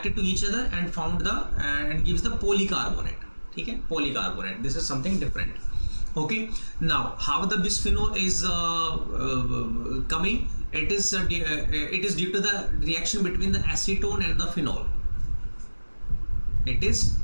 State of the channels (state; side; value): inverted; both; correlation -1.00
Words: to each other and formed the and gives the polycarbonate. Okay, polycarbonate. This is something different. Okay. Now, how the bisphenol is coming? It is due to the reaction between the acetone and the phenol. It is